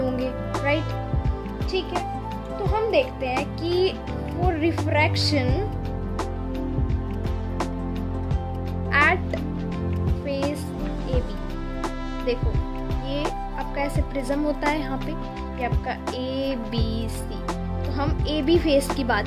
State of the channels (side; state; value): both; identical; correlation 1.00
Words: होंगे, राइट, ठीक है। तो हम देखते हैं कि for refraction at face AB, देखो ये आपका ऐसे प्रिज्म होता है, यहाँ पे ये आपका ABC, तो हम AB फेस की